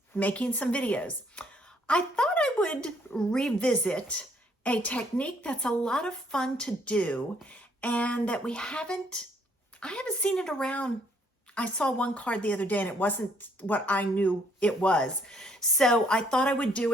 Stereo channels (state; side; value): normal; both; correlation 0.66